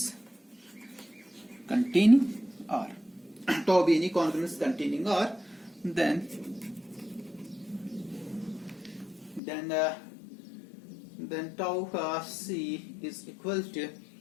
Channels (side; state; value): right; drops out; at 9.4 s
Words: containing R. Tau be any congruence containing R, then tau C is equal to